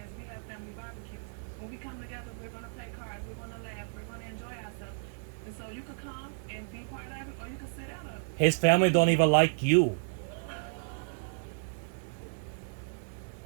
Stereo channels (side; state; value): left; silent; digital silence